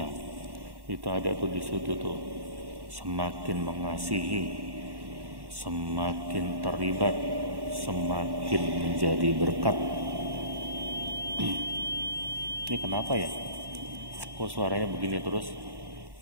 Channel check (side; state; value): left; late; 1.1 ms